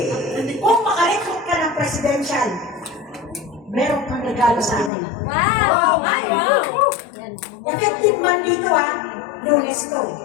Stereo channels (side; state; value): right; drops out; at 4.9 s